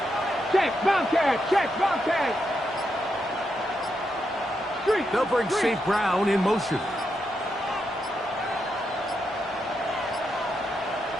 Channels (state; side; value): normal; both; correlation 0.83